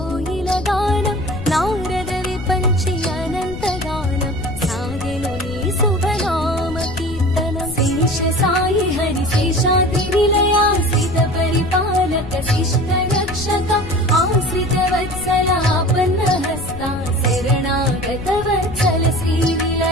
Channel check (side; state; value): left; noise; rumble, 11 dB below the sound